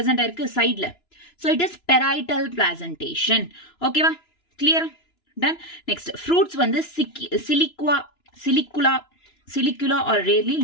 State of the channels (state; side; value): late; right; 2.9 ms